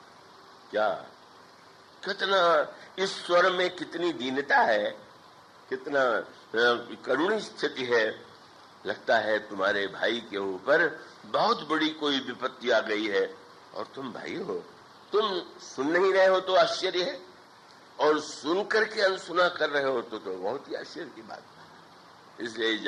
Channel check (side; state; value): both; identical; correlation 1.00